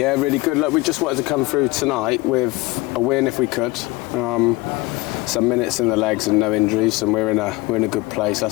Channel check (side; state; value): right; quieter; 21.1 dB